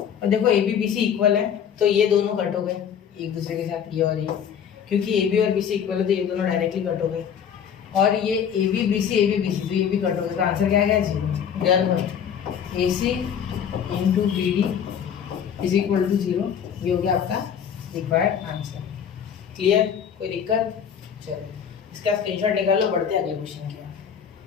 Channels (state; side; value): quieter; right; 8.1 dB